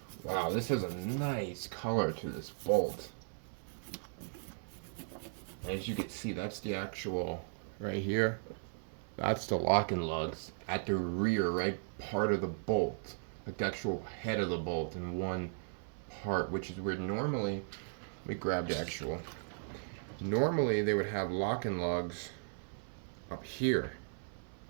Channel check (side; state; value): left; silent; 53 dB below the other